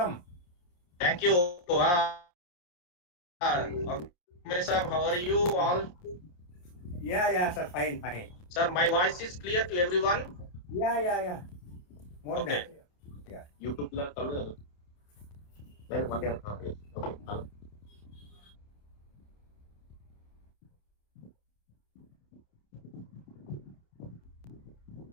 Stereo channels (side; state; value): right; late; 28 ms